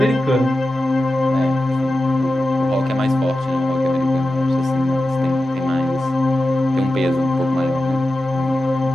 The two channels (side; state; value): both; normal; correlation 0.93